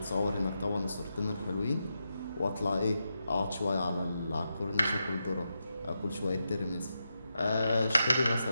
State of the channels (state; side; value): inverted; both; correlation -0.87